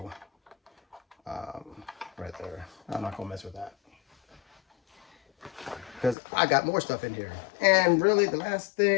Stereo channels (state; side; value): drops out; right; at 6.2 s